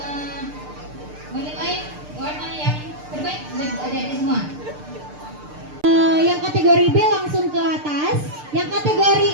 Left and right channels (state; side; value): late; left; 6.7 ms